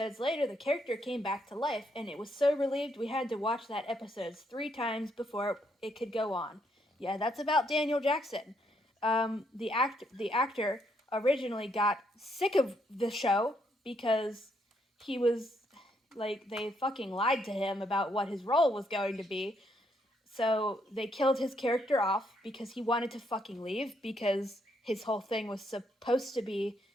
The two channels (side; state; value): both; normal; correlation 0.74